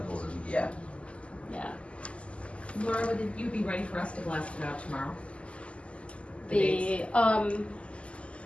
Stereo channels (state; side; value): late; right; 0.057 ms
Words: code. Yeah. Yeah. Laura, would you be ready for us to blast it out tomorrow?